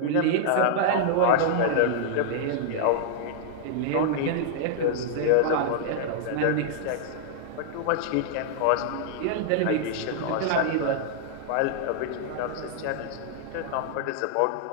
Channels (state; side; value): different; both; correlation -0.01